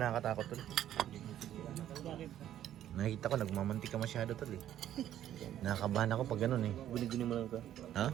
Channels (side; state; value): left; quieter; 11.5 dB